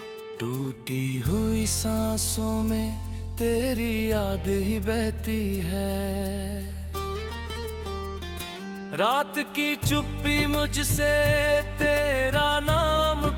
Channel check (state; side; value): identical; both; correlation 1.00